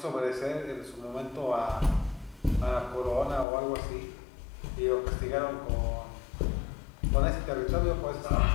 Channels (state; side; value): drops out; right; at 3.5 s